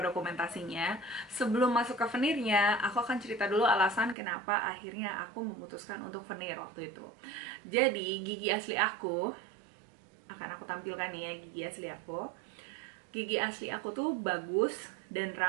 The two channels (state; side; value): drops out; left; at 4.2 s